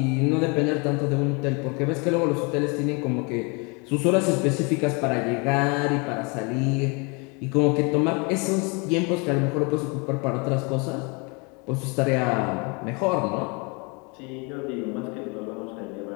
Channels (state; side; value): quieter; right; 31.0 dB